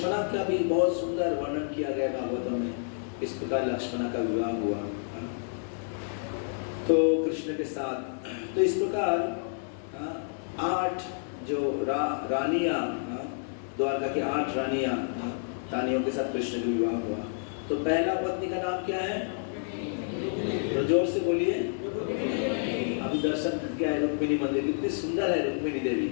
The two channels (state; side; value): silent; right; digital silence